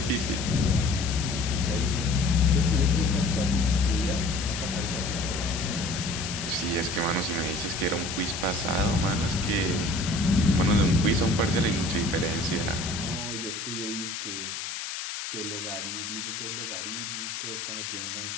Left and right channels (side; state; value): left; noise; hiss, 6 dB below the sound